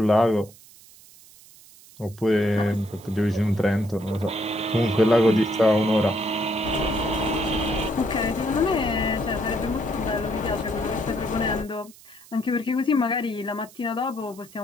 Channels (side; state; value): right; noise; hiss, 23 dB below the sound